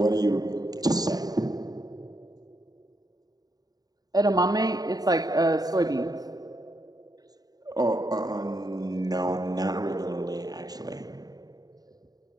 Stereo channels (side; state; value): left; late; 0.18 ms